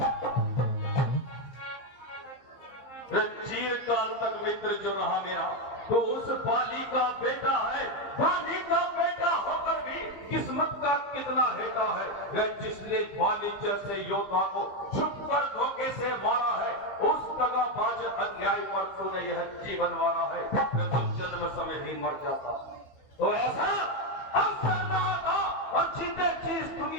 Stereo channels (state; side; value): late; right; 15 ms